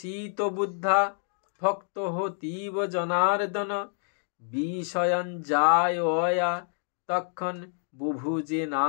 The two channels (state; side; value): silent; right; 56 dB below the other